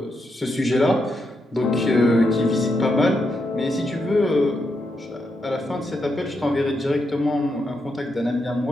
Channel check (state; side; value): normal; both; correlation 0.82